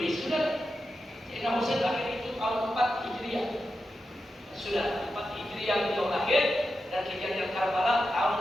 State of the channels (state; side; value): normal; both; correlation 0.90